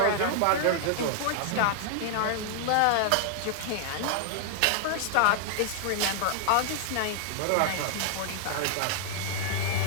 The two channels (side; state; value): both; different; correlation 0.00